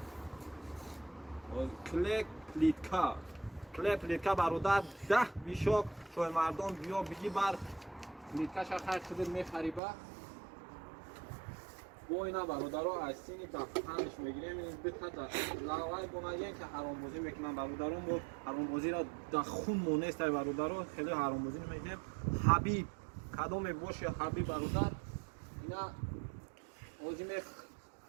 клеп плитка бародар 10 бишок шоҳи мардон биё биги бар плиткаша хай худир мехариба бо ина бародаро айсини дафтанш мегирем битада лавай бонаген ки ҳаромбозӣ мекунам бародаро мо ҳаромбозиро да хун монестай бародаро хеле ҳаромбозӣ намекунем ҳабиб кадоме боши ҳабиб бародар ина ҳози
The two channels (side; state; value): left; drops out; at 9.8 s